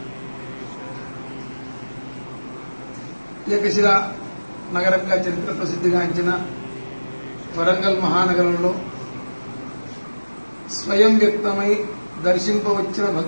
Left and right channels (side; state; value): both; inverted; correlation -1.00